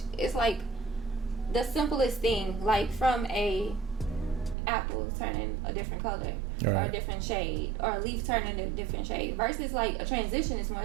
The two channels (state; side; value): drops out; left; at 4.5 s